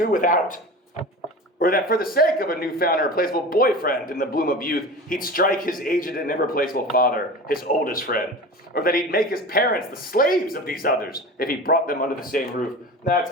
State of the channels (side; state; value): both; normal; correlation 0.33